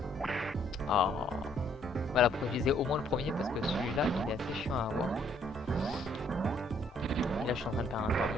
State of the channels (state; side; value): normal; both; correlation 0.66